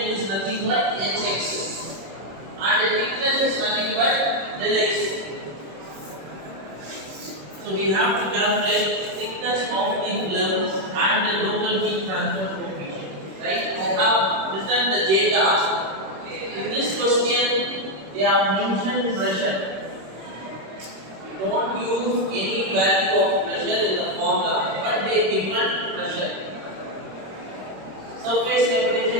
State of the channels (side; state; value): left; late; 26 ms